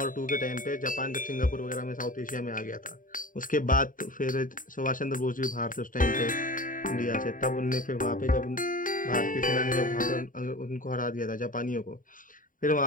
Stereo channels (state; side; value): late; right; 0.39 ms